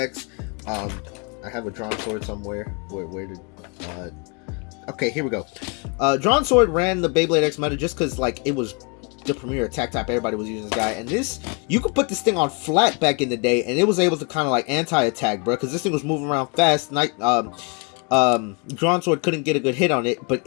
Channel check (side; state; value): right; quieter; 32.7 dB